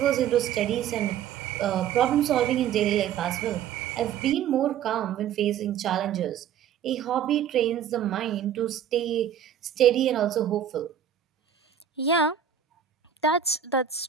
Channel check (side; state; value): left; quieter; 9.0 dB